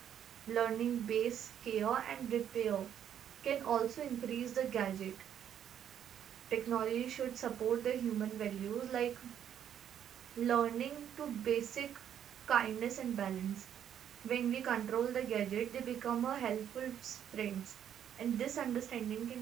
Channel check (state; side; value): quieter; left; 9.5 dB